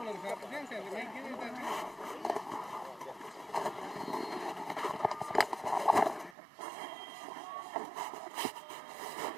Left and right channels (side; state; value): left; drops out; at 6.4 s